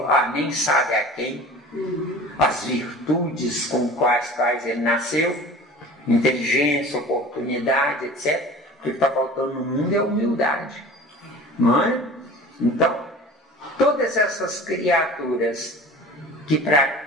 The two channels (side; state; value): both; normal; correlation 0.40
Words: a nem sabe a quem, as virtudes com quais ele nasceu, inteligência, oportunidade, etc. O que está faltando no mundo é humildade, não é? Então, todas essas criaturas que